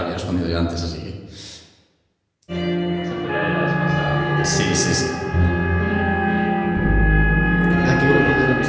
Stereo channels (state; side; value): identical; both; correlation 1.00